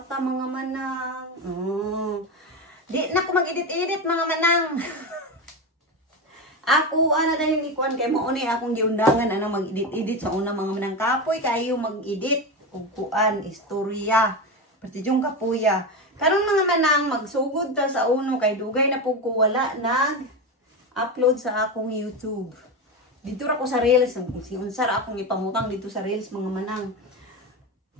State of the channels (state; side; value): normal; both; correlation 0.17